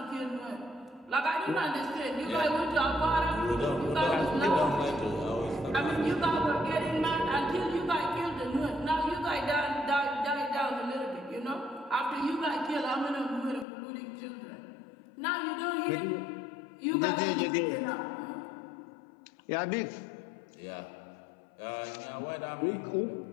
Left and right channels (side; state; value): right; drops out; at 13.7 s